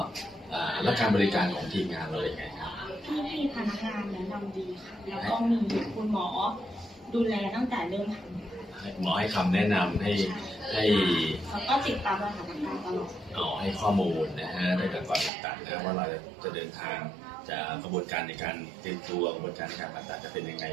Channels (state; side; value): drops out; left; at 15.3 s